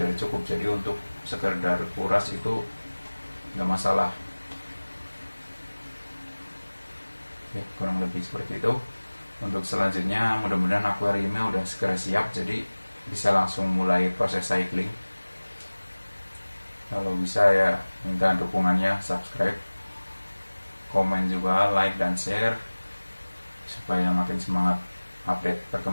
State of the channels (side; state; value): both; inverted; correlation -1.00